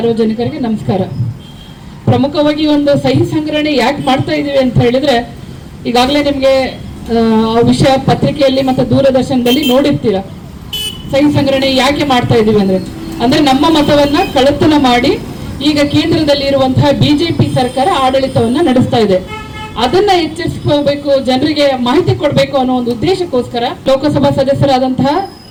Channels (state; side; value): identical; both; correlation 1.00